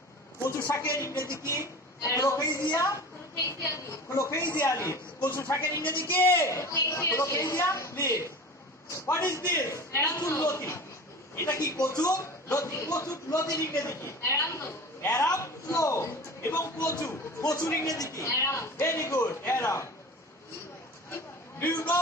কচু শাকের ইংরেজি কি? Colocasia? Colocasia leaf. কচু শাকের ইংরেজি কি? Colocasia leaf. What is this? কচুর লতি। এটা কি কচুর লতি? কচুর লতির ইংরেজি কি? Aram flow. এবং কচু। কচুর ইংরেজি কি? Very good. Aram. Do you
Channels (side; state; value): both; normal; correlation 0.36